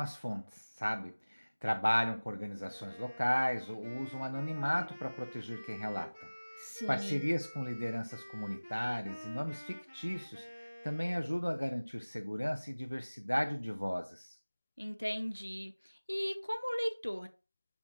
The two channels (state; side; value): inverted; both; correlation -1.00